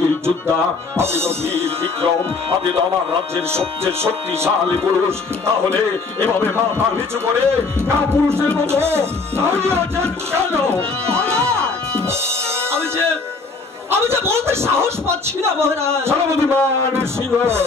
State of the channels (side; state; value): right; quieter; 4.1 dB